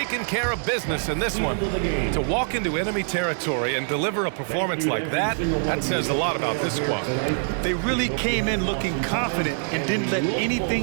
care of business in this one. To walk into enemy territory and deliver a performance like that, that says a lot about this squad. They really came in looking confident and didn't let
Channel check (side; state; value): left; silent; digital silence